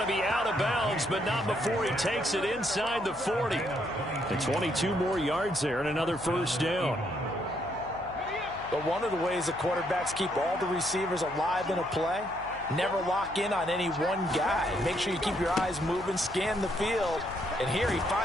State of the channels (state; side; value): noise; left; hum, 17 dB below the sound